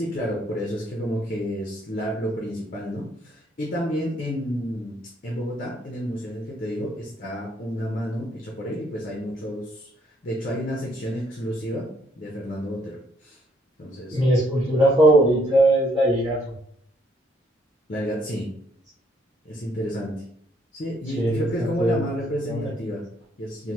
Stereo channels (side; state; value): both; normal; correlation 0.68